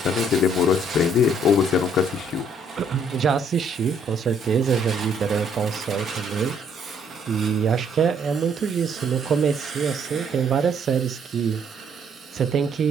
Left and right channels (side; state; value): both; normal; correlation 0.66